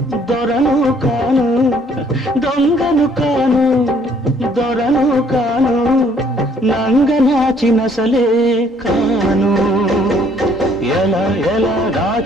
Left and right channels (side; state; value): both; normal; correlation 0.63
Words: దొరను కాను దొంగను కాను దొరను కాను నంగనాచినసలే కాను ఎలా ఎలా